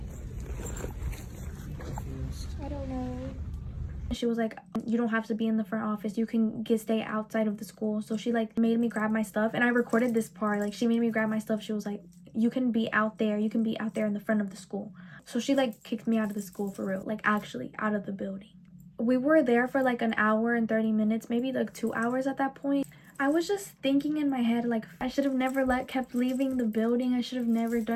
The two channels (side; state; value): both; identical; correlation 1.00